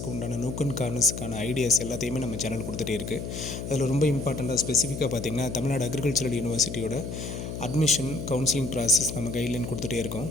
உண்டான நோக் அண்ட் கார்னர்ஸுக்கான ஐடியாஸ் எல்லாத்தையுமே நம்ம சேனல் கொடுத்துட்டே இருக்குது. அதில் ரொம்ப இம்பார்ட்டண்ட்டாக ஸ்பெசிஃபிக்காக பார்த்திங்கன்னா தமிழ்நாடு அக்ரிகல்ச்சரல் யூனிவர்சிட்டியோட அட்மிஷன் கவுன்சிலிங் ப்ராசஸ் நம்ம கைட்லைன் கொடுத்துட்டே இருக்கோம்.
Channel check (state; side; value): noise; left; hum, 6 dB below the sound